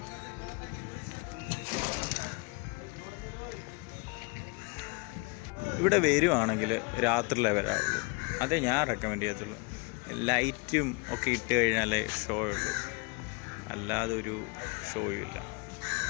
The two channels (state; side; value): quieter; right; 30.3 dB